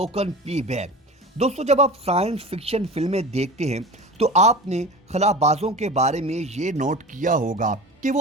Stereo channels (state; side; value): normal; both; correlation 0.34